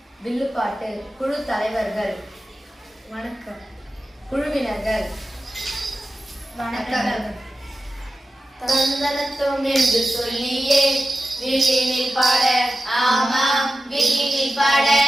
வில்லுப்பாட்டு, குழு தலைவர்கள், வணக்கம். குழுவினர்கள், வணக்கம். தந்தனத்தும் என்று சொல்லியே வில்லினில் பாட, ஆமாம் வில்லினில் பாட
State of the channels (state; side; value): normal; both; correlation 0.93